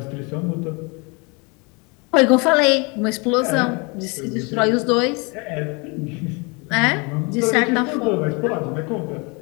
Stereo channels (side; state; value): right; quieter; 30.1 dB